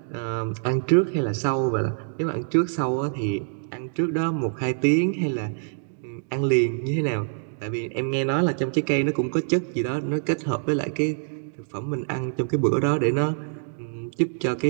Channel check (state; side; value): silent; left; digital silence